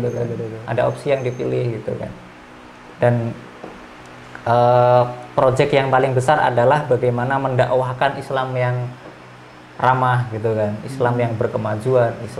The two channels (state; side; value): identical; both; correlation 1.00